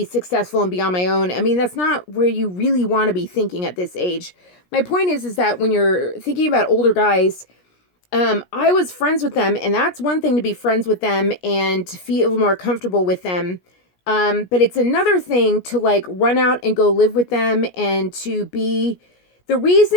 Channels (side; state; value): right; late; 17 ms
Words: successful and be on my own. I mean, that's not where you really want to be thinking at this age. My point is that when you're thinking about older guys, I was friends with them, and that's one thing to be friends with them and to feel more comfortable with them. But it's another thing to like run out and go live with them and to be the